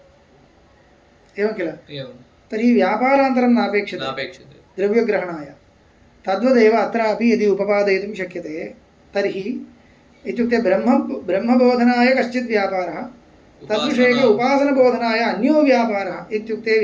एवं किल तर्हि व्यापारान्तरं नापेक्षते द्रव्यग्रहणाय तद्वदेव अत्रापि यदि उपपादयितुं शक्यते तर्हि इत्युक्ते ब्रह्मबोधनाय कश्चित् व्यापारः तद्विषयक उपासनबोधनाय अन्यो व्यापारः इत्युक्ते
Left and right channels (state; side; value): identical; both; correlation 1.00